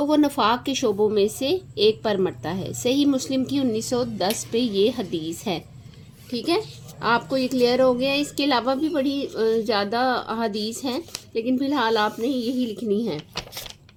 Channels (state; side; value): identical; both; correlation 1.00